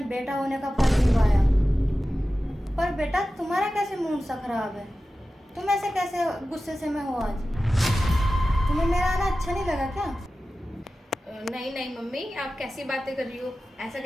बेटा होने का फर्ज निभाया। पर बेटा तुम्हारा कैसे मूड सा खराब है? तुम ऐसे कैसे गुस्से से में हो आज? तुम्हें मेरा आना अच्छा नहीं लगा क्या? नहीं नहीं मम्मी, आप कैसी बातें कर रही हो? ऐसा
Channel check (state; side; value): normal; both; correlation 0.95